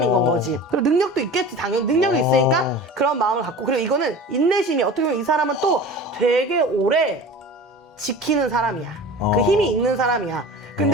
건 거지. 그리고 능력도 있겠지. 당연히 능력이 있으니까 그런 마음을 갖고. 그리고 이거는 인내심이 어떻게 보면 이 사람은 또 되게 오래 지키는 사람이야. 그 힘이 있는 사람이야.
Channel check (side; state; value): both; normal; correlation 0.37